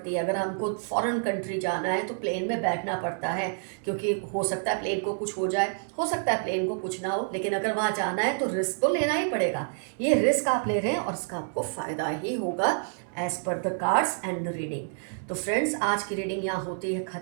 है। अगर हमको फॉरेन कंट्री जाना है तो प्लेन में बैठना पड़ता है, क्योंकि हो सकता है प्लेन को कुछ हो जाए, हो सकता है प्लेन को कुछ ना हो, लेकिन अगर वहाँ जाना है तो रिस्क तो लेना ही पड़ेगा। ये रिस्क आप ले रहे हैं और इसका आपको फ़ायदा ही होगा as per the cards and the reading. तो फ्रेंड्स, आज की रीडिंग यहाँ होती है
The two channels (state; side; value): silent; left; digital silence